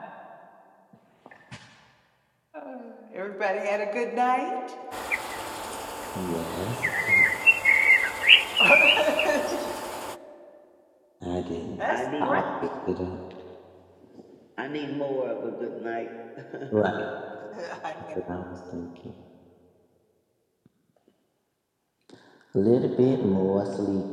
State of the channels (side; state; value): both; identical; correlation 1.00